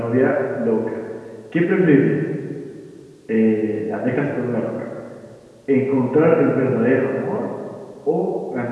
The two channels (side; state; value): both; identical; correlation 1.00